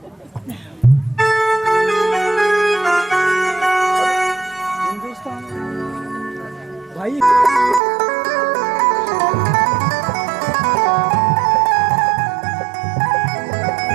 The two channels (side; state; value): left; drops out; at 7.8 s